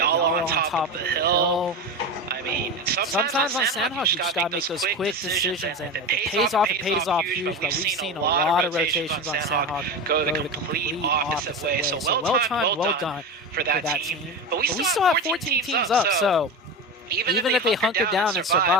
on top of the hill. I mean, sometimes on Sandhawk you just gotta make those quick decisions, and if it pays off huge, but we've seen a lot of rotations on Sandhawk go the complete opposite way. So well done for that team. But we still have 14 teams up, so even if they hunker down and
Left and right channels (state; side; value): normal; both; correlation 0.23